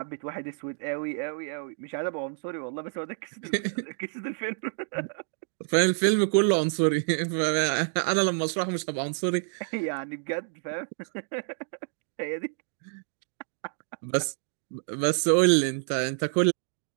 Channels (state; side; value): silent; left; digital silence